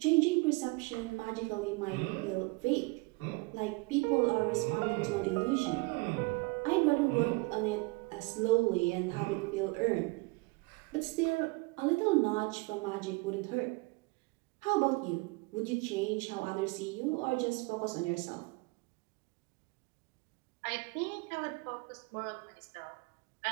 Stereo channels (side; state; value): left; quieter; 27.3 dB